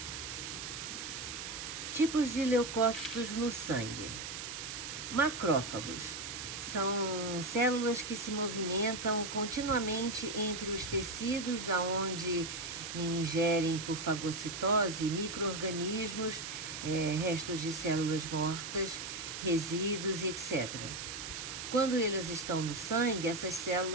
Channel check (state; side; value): noise; right; hiss, 7 dB below the sound